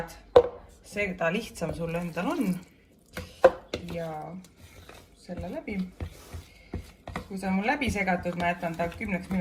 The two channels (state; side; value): identical; both; correlation 1.00